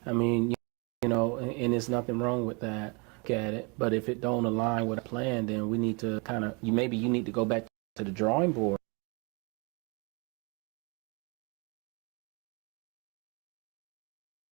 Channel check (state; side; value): quieter; left; 31.3 dB